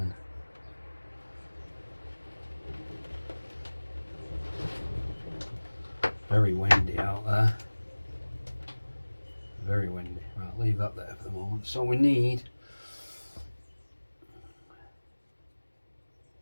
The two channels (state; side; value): inverted; both; correlation -1.00